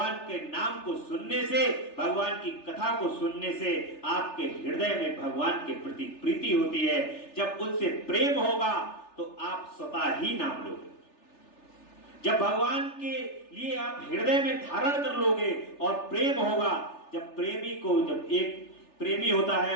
के नाम को सुनने से, भगवान की कथा को सुनने से आपके हृदय में भगवान के प्रति प्रीति होती है। जब उनसे प्रेम होगा तो आप स्वतः ही नाम लोगे। जब भगवान के लिए आप हृदय में धारण कर लोगे और प्रेम होगा, जब एक प्रेमी होता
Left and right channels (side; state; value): right; late; 3.4 ms